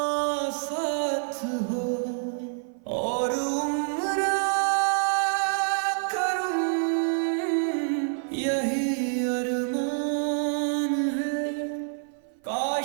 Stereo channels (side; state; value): left; silent; 56 dB below the other